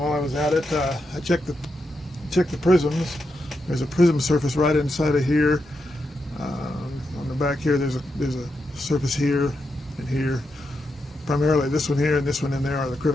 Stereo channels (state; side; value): normal; both; correlation 0.85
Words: I was at it, I checked the prisms. There's a prism surface right inside of here on the the back here, there's a surface here and here. Primarily this one here and this one in there are the